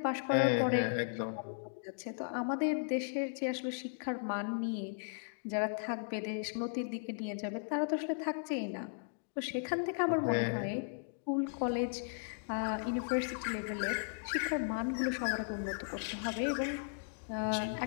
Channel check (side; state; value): right; silent; digital silence